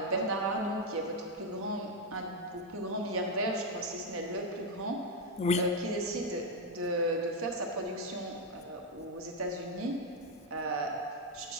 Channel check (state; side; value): normal; both; correlation 0.04